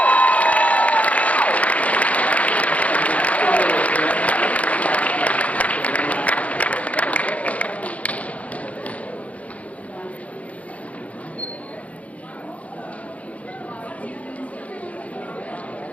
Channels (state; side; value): late; right; 0.067 ms